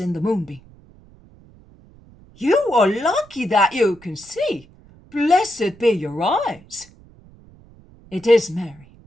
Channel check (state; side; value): noise; right; rumble, 25 dB below the sound